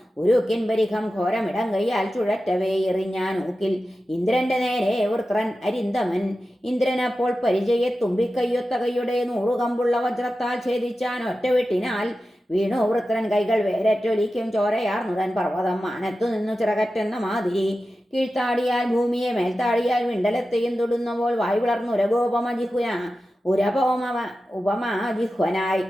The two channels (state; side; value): normal; both; correlation 0.93